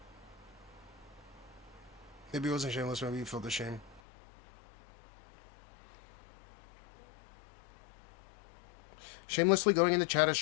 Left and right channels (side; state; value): right; drops out; at 4.0 s